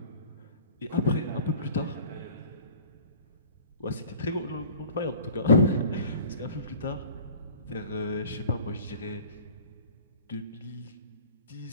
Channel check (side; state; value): both; inverted; correlation -0.44